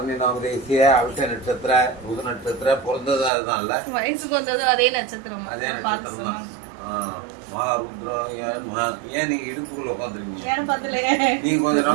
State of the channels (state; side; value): drops out; left; at 3.3 s